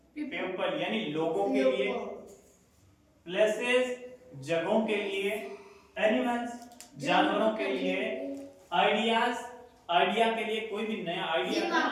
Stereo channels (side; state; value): both; identical; correlation 1.00